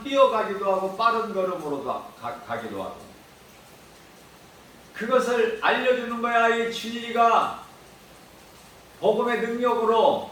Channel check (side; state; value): both; identical; correlation 1.00